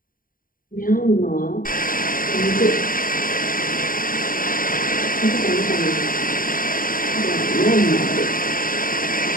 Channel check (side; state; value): right; late; 0.41 ms